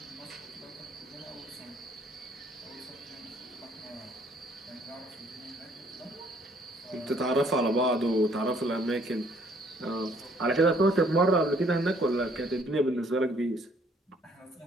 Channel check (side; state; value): both; normal; correlation 0.63